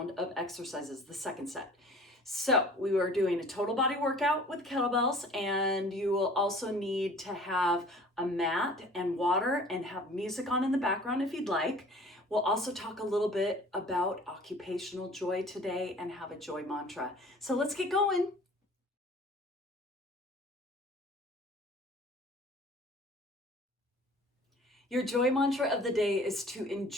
of exercises, the second set. So we are doing a total body workout with kettlebells, and you will also need to have a mat and water and have music on in the background if you'd like. We'll also talk a little bit about occupational joy today and have a joy mantra. So let's get going. Your joy mantra of the day is to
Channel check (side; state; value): both; normal; correlation 0.48